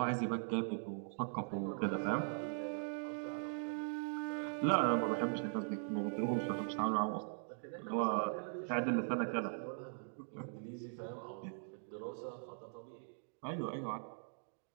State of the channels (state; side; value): silent; left; digital silence